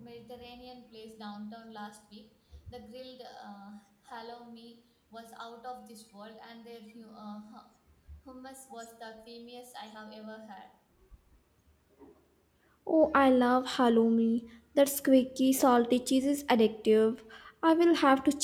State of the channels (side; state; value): both; identical; correlation 1.00